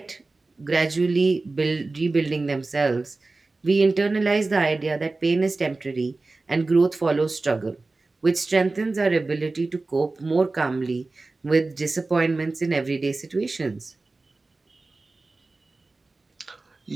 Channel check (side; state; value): left; quieter; 3.4 dB